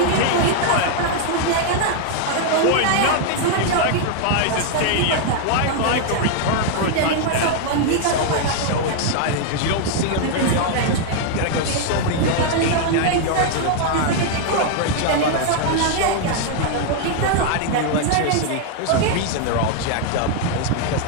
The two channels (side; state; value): both; different; correlation 0.00